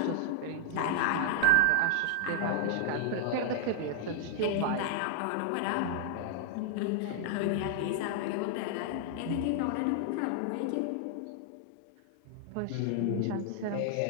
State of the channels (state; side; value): different; both; correlation 0.00